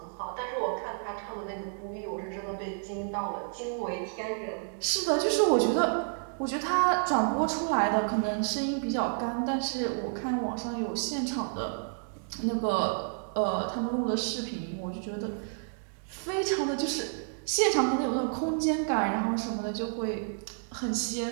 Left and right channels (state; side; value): silent; left; digital silence